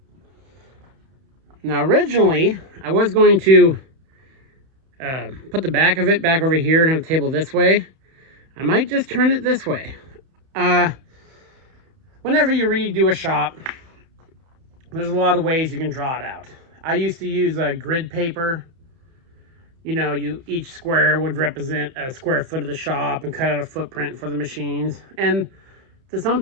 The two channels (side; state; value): left; late; 31 ms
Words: Now, originally, I was going to put the back of it back over here and have the table this way. I might just turn it this way. Whenever you redo a shop, there's a lot of ways you can draw it out. I used to use a grid paper. You know, each square would represent a square foot of the shop and cut out a footprint for the machines. And to some